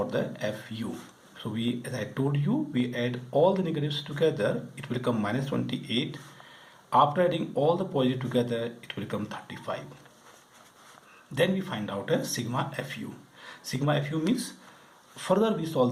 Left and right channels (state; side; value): identical; both; correlation 1.00